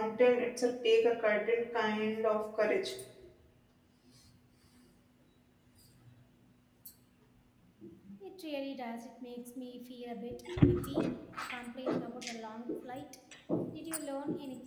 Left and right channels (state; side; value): identical; both; correlation 1.00